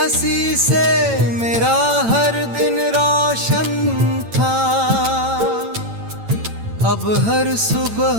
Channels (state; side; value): late; left; 8.9 ms